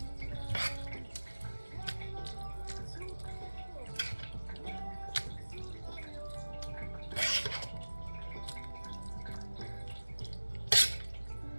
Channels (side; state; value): both; inverted; correlation -1.00